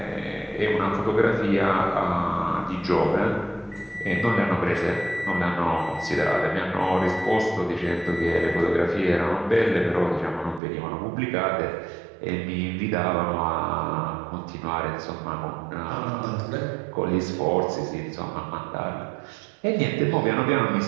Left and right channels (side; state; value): left; drops out; at 10.6 s